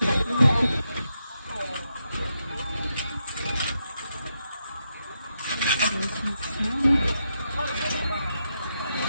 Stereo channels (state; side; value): inverted; both; correlation -0.83